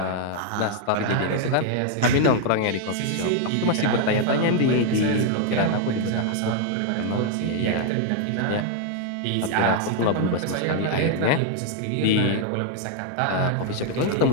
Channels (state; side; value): different; both; correlation 0.00